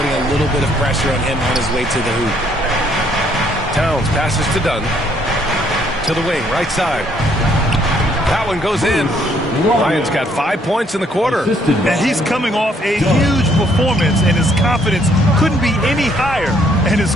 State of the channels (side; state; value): both; normal; correlation 0.67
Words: a little bit of pressure on him on his way to the hoop. Towns passes to Dunn. To the wing, right side. That one goes in. Ryan's got 5 points in the quarter. And he's coming off a huge performance, and his confidence couldn't be any higher. And his